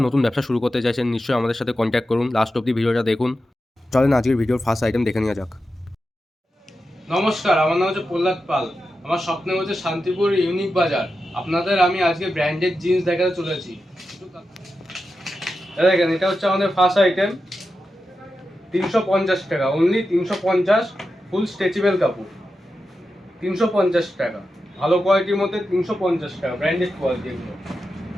নতুন ব্যবসা শুরু করতে চাইছেন নিশ্চয়ই আমাদের সাথে কন্ট্যাক্ট করুন। লাস্ট অব্দি ভিডিওটা দেখুন। চলেন আজকের ভিডিওর ফার্স্ট আইটেম দেখে নেওয়া যাক। নমস্কার, আমার নাম হচ্ছে প্রহ্লাদ পাল। আমার স্বপ্ন হচ্ছে শান্তিপুর ইউনিক বাজার। আপনাদের আমি আজকে ব্র্যান্ডেড জিন্স দেখাতে চলেছি। দেখেন, এটা হচ্ছে আমাদের ফার্স্ট আইটেম। 350 টাকা, অনলি 350। ফুল স্ট্রেচেবল কাপড়, 350 টাকা। ভালো কোয়ালিটির মধ্যে 350 টাকা, ব্র্যান্ডেড কোয়ালিটি এগুলো।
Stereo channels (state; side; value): normal; both; correlation 0.90